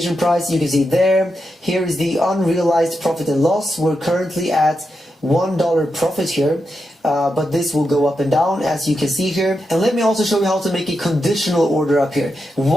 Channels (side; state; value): both; normal; correlation 0.86